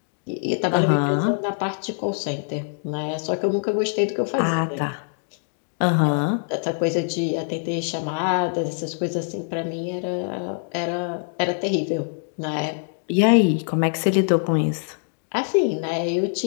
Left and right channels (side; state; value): right; silent; digital silence